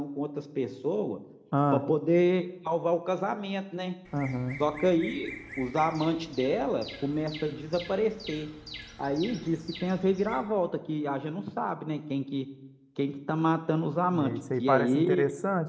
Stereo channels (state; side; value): identical; both; correlation 1.00